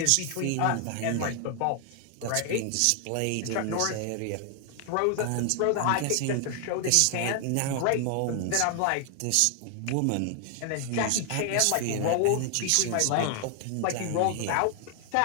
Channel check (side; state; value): both; different; correlation 0.00